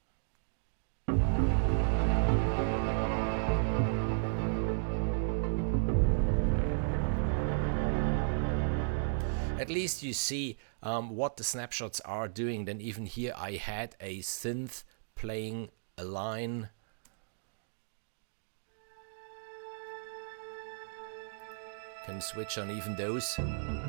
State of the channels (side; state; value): left; silent; digital silence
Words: At least you see what the snapshots are doing. Then even here I had a synth playing a line. Can switch on even those.